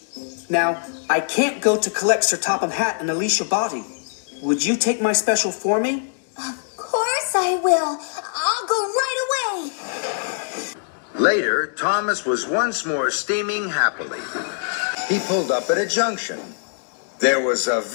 Now, I can't go to collect Sir Topham Hatt and Alicia Botti. Would you take my special for me? Of course I will. I'll go right away. Later, Thomas was once more steaming happily. He pulled up at a junction. There was a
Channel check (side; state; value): right; silent; digital silence